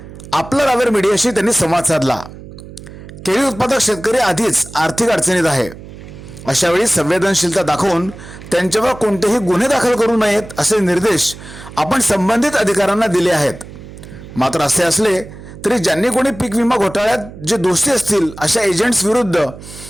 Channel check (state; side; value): noise; right; hum, 16 dB below the sound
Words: आपला रावेर मीडियाशी त्यांनी संवाद साधला। केळी उत्पादक शेतकरी आधीच आर्थिक अडचणीत आहे, अशा वेळी संवेदनशीलता दाखवून त्यांच्यावर कोणतेही गुन्हे दाखल करू नयेत असे निर्देश आपण संबंधित अधिकाऱ्यांना दिले आहेत। मात्र असे असले तरी ज्यांनी कोणी पीक विमा घोटाळ्यात जे दोषी असतील अशा एजंट्स विरुद्ध